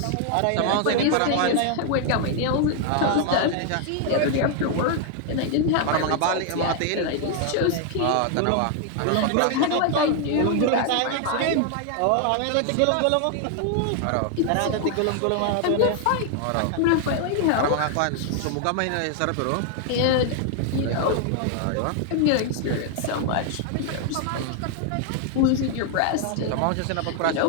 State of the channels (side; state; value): both; different; correlation 0.00